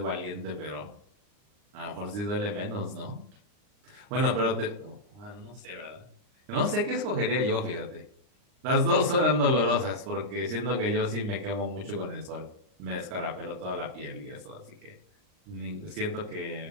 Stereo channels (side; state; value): left; late; 39 ms